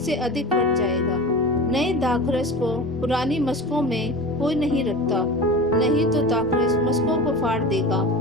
अधिक फट जाएगा। नए दाखरस को पुरानी मशकों में कोई नहीं रखता, नहीं तो दाखरस मशकों को फाड़ देगा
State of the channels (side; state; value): both; normal; correlation 0.32